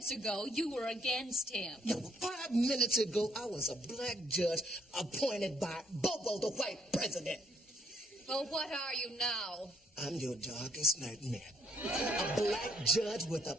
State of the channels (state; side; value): normal; both; correlation 0.68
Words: ago, you were against him. No, 5 minutes ago, I was a black judge appointed by Bobo, the white president. Well, what are you now? I'm your darkest nightmare. A black judge with a